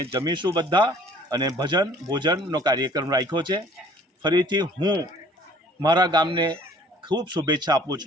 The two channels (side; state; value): both; normal; correlation 0.54